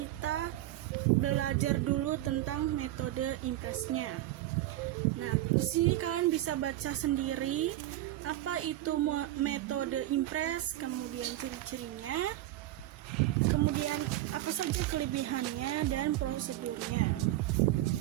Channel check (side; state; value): left; quieter; 15.0 dB